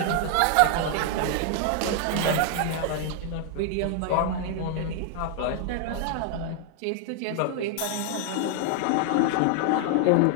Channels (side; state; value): both; different; correlation 0.00